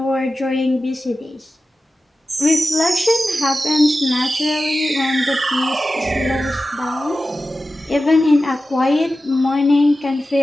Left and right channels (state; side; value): normal; both; correlation 0.94